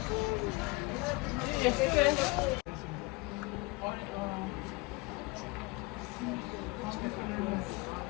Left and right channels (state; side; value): quieter; right; 24.9 dB